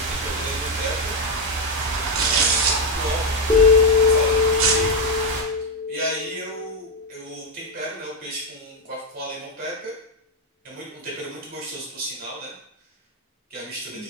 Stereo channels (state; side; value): normal; both; correlation 0.03